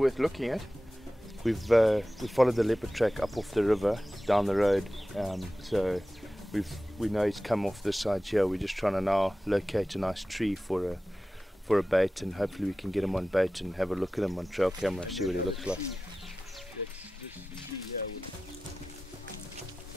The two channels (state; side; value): normal; both; correlation 0.95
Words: looking at. We followed the leopard track up off the river down the road, so we know he's come off this side here. We're just trying to now locate a nice tree for a bait, and hopefully we can get him on bait and have a look at him on trail camera, see what he looks like.